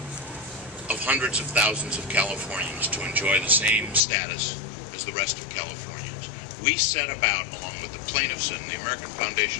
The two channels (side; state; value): right; drops out; at 4.0 s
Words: of hundreds of thousands of Californians to enjoy the same status as the rest of Californians. We set about, along with the plaintiffs and the American